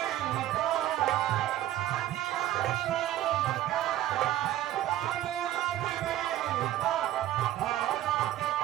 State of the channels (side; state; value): left; quieter; 13.3 dB